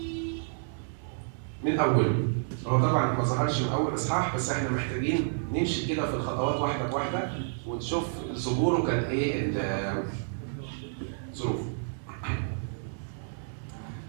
من أوله. هو طبعا ما ظهرش من أول إصحاح، بس إحنا محتاجين نمشي كده في الخطوات واحدة بواحدة ونشوف ظهوره كان إيه الظروف.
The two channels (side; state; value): left; silent; digital silence